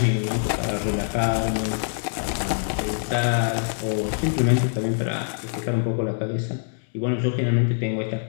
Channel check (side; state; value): right; silent; digital silence